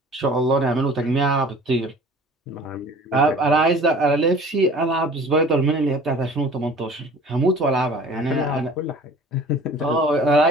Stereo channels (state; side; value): normal; both; correlation 0.46